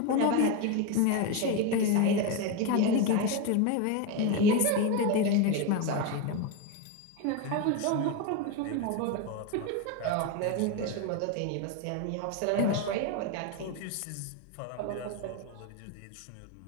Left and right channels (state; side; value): different; both; correlation 0.03